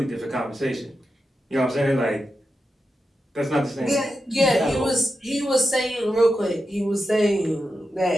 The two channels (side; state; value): both; normal; correlation 0.89